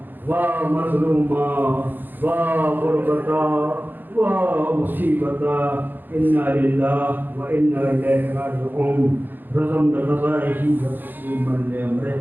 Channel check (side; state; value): left; late; 0.090 ms